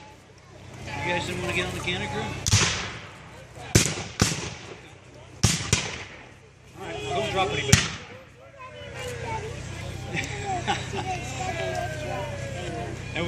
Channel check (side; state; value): both; identical; correlation 1.00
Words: You guys didn't want to get on the cannon crew? Alright, don't drop anybody. That